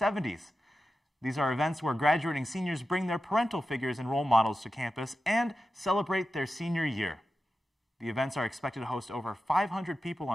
These are events where graduating seniors bring their parental figures and role models to campus and celebrate their senior year. The events are expected to host over 500 people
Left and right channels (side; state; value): both; normal; correlation 0.92